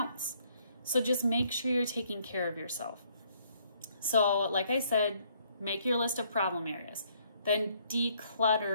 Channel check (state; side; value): inverted; both; correlation -0.67